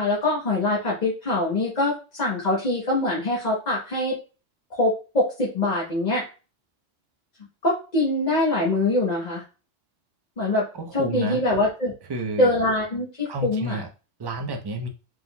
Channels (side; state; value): both; normal; correlation 0.04